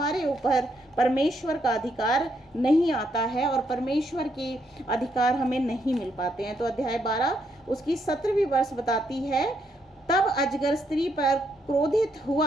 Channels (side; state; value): both; normal; correlation 0.76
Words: ऊपर परमेश्वर का अधिकार नहीं आता है और परमेश्वर के अधिकार हमें नहीं मिल पाते हैं। तो अध्याय 12 उसकी 17वीं वर्ष बताती है, तब अजगर स्त्री पर